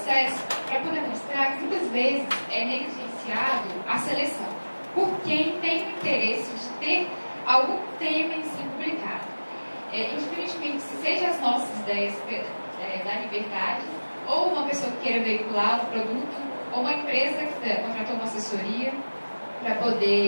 para poder mostrar que muitas vezes é negligenciado a seleção por quem tem o interesse de ter algum tema em si publicado. Indiferentemente se seja as nossas ideias da liberdade, ou uma pessoa que queira veicular um produto, ou uma empresa que contratou uma assessoria para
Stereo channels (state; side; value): inverted; both; correlation -1.00